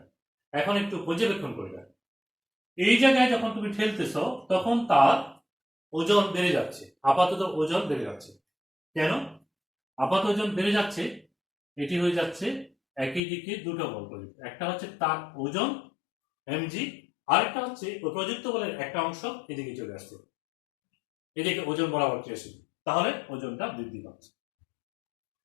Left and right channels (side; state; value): right; drops out; at 13.2 s